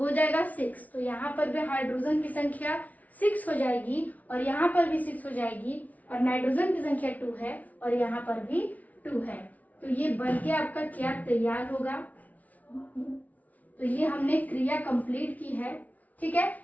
जाएगा 6। तो यहाँ पर भी हाइड्रोजन की संख्या 6 हो जाएगी और यहाँ पर भी 6 हो जाएगी और नाइट्रोजन की संख्या 2 है और यहाँ पर भी 2 है। तो ये बनके आपका क्या तैयार होगा, तो ये हमने क्रिया कंप्लीट की है। ठीक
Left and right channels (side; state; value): right; late; 0.072 ms